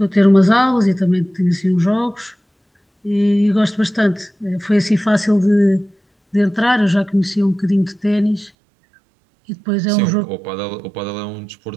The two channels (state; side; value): drops out; left; at 8.5 s